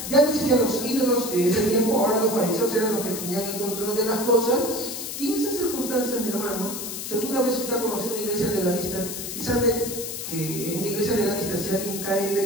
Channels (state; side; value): noise; left; hiss, 6 dB below the sound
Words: ya no existían los ídolos de ese tiempo, ahora los fariseos eran los que tenían el control de las cosas, y en esas circunstancias, mi hermano, si alguna vez usted ha conocido una iglesia legalista y sabe que en una iglesia legalista si alguien cae en